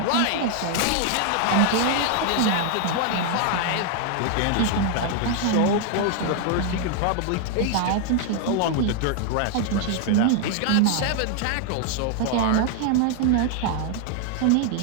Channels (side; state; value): both; different; correlation 0.00